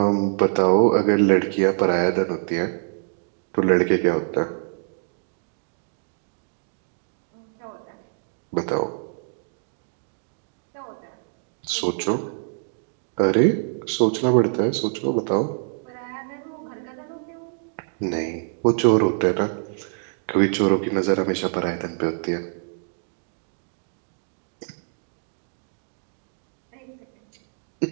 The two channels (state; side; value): silent; left; digital silence